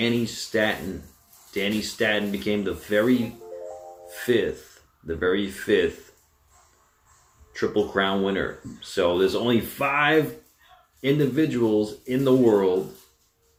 Statton. Danny Statton became the very fifth Triple Crown winner. So there's only 5 individuals in the world,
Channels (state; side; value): identical; both; correlation 1.00